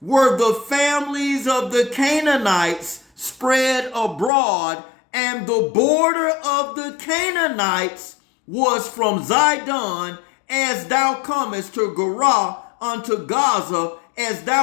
were the families of the Canaanites spread abroad, and the border of the Canaanites was from Zidon, as thou comest to Gerar unto Gaza, as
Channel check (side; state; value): right; drops out; at 4.3 s